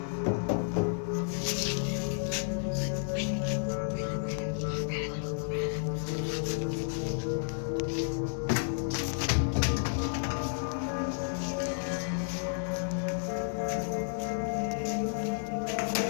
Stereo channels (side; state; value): right; silent; digital silence